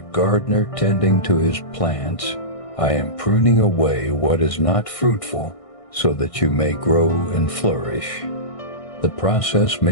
gardener tending to his plants, I am pruning away what is not fruitful so that you may grow and flourish. The process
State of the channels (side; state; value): right; late; 1.6 ms